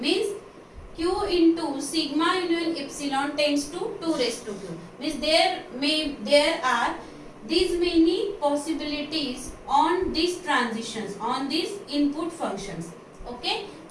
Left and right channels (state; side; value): identical; both; correlation 1.00